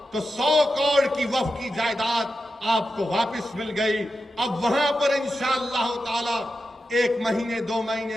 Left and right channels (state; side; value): normal; both; correlation 0.90